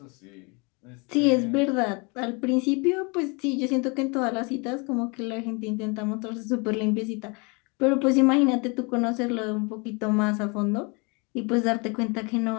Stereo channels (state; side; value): quieter; right; 30.6 dB